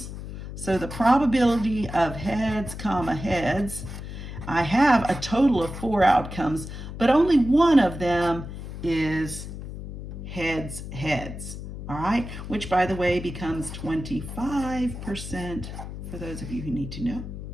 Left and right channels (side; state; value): left; noise; hum, 9 dB below the sound